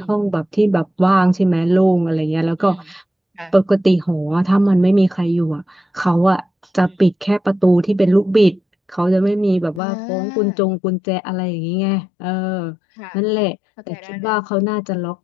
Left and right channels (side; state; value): right; drops out; at 9.8 s